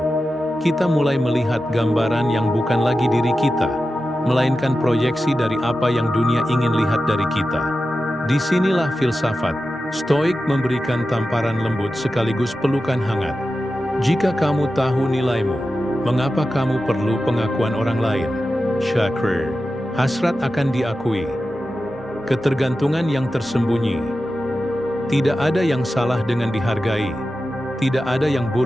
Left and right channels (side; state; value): both; normal; correlation 0.92